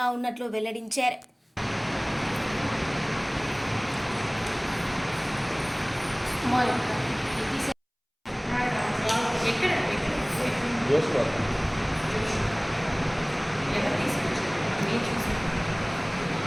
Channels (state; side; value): identical; both; correlation 1.00